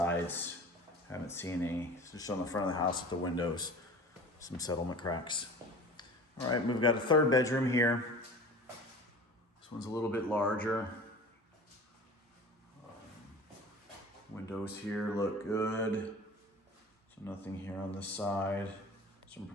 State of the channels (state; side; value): normal; both; correlation 0.39